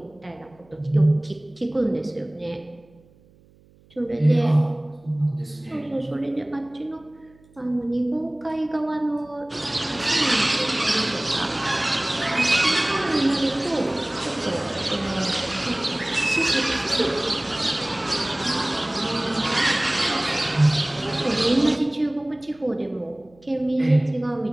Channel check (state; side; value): noise; right; hum, 29 dB below the sound